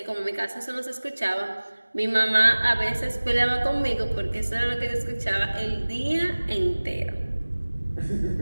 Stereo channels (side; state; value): both; inverted; correlation -1.00